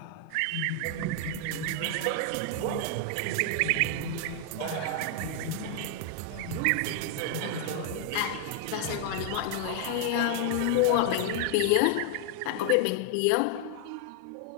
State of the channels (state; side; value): different; both; correlation 0.00